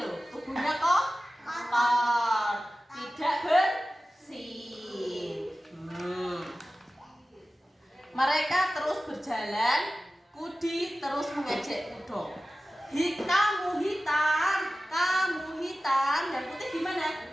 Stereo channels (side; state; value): both; normal; correlation 0.95